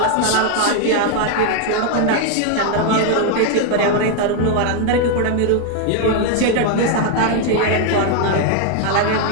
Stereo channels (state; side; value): different; both; correlation 0.00